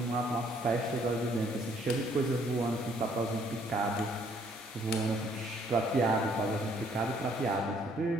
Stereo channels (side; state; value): both; normal; correlation 0.64